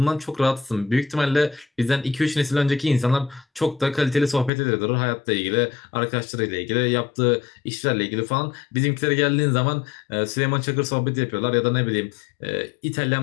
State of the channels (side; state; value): right; drops out; at 4.5 s